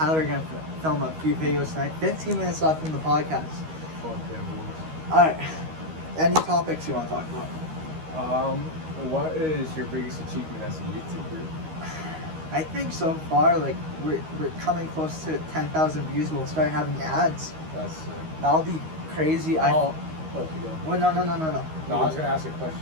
are gonna film a few videos tonight. 15 minutes left in the podcast. Fuck yeah, boys. All right. Any topics you want to talk about? What is your biggest achievement as a YouTuber? I think so far, like we're coming close to 10,000 views. We'll start having ads. That's sick. That'll be crazy. Oh, you go. Well, no. No, I was gonna ask a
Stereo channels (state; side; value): late; left; 13 ms